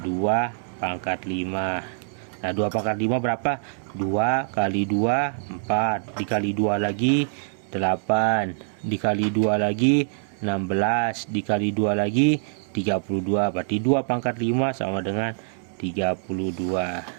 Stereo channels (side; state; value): left; silent; 62 dB below the other